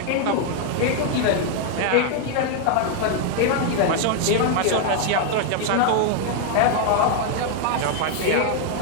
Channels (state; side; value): different; both; correlation 0.00